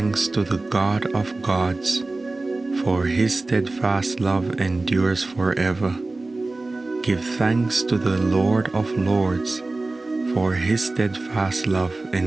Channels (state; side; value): quieter; left; 3.2 dB